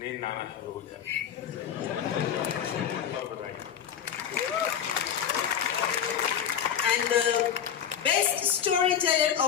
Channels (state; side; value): quieter; right; 8.8 dB